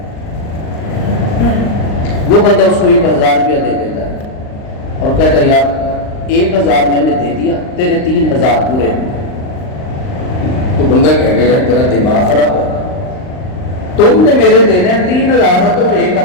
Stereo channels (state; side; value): late; right; 39 ms